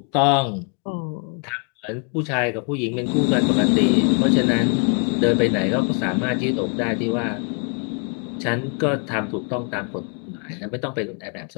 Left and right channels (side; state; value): right; quieter; 39.7 dB